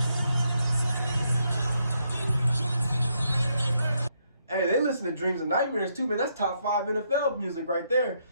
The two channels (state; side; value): inverted; both; correlation -0.77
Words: Hey, they listen to Dreams and Nightmares too, man. That's top 5 NFL music right there.